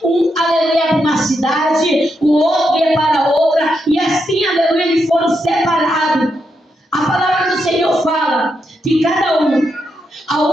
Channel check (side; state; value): both; normal; correlation 0.82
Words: um, aleluia, para uma cidade, o outro ia para outra, e assim, aleluia, eles foram separados. A palavra do Senhor fala que cada um,